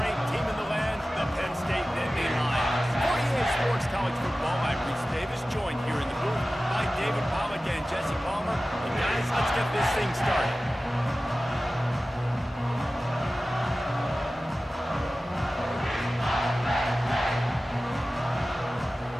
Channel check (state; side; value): normal; both; correlation 0.96